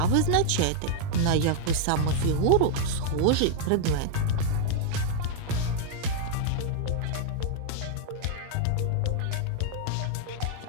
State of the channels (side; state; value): both; different; correlation 0.00